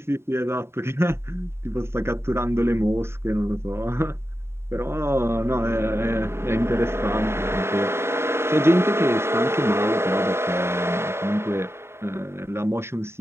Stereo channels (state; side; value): late; left; 0.12 ms